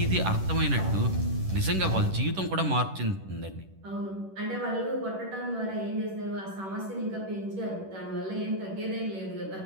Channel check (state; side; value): late; left; 10 ms